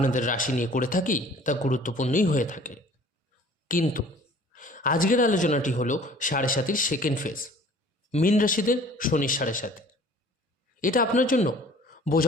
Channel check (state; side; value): normal; both; correlation 0.50